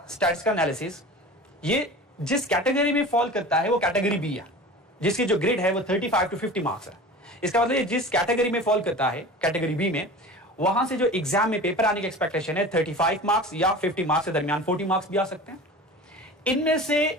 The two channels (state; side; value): normal; both; correlation 0.36